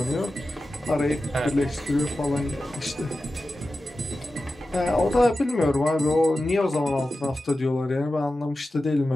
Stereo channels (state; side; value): normal; both; correlation 0.93